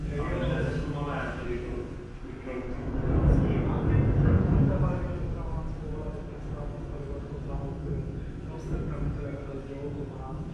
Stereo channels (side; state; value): both; identical; correlation 1.00